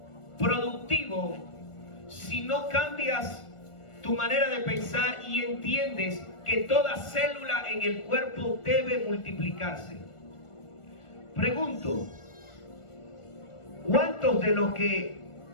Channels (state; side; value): late; right; 1.4 ms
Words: productivo si no cambias tu manera de pensar y entiendes que toda célula en el cuerpo debe multiplicarse. Pregunto: ¿cuántos de los que